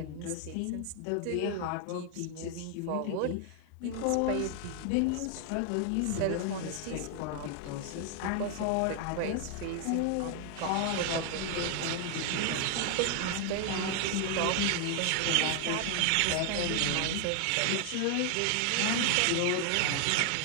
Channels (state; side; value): different; both; correlation 0.00